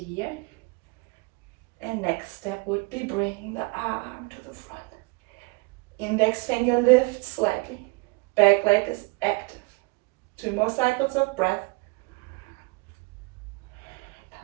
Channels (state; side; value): quieter; left; 27.1 dB